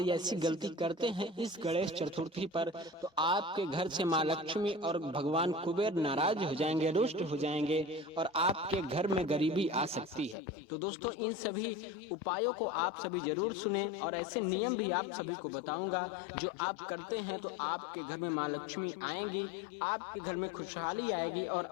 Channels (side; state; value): right; drops out; at 10.4 s